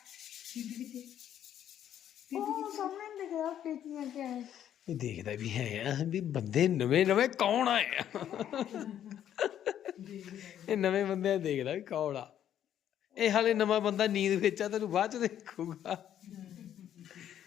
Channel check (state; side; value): quieter; right; 10.5 dB